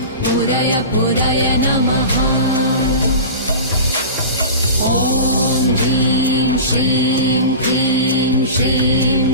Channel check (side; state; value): both; inverted; correlation -0.33